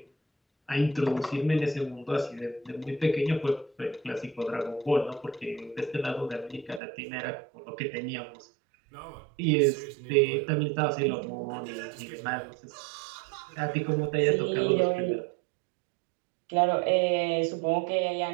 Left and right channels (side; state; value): left; drops out; at 6.8 s